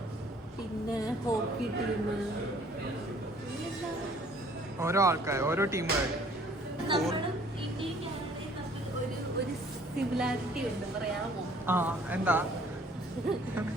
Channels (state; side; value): normal; both; correlation 0.57